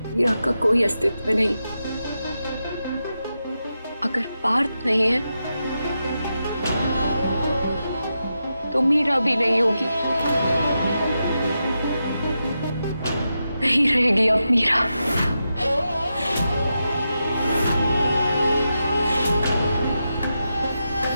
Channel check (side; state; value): both; inverted; correlation -0.88